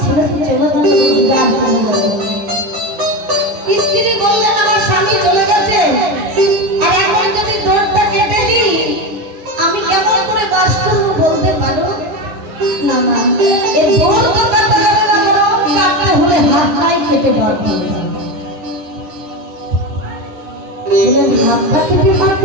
ছেলে তো চলে গেল, রোজগার চলে গেল। স্ত্রী বললেন, আমার স্বামী চলে গেছে, আর এখন যদি দরজা কেটে দিই, আমি কেমন করে বাস করবো বলতে পারো? না না, এই বড় তো কাটতে হবে না, বরং কাটতে হলে হাতটাই কেটে বার করতে হবে। বলেন, হাতটা কেটে বার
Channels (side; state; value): left; late; 9.8 ms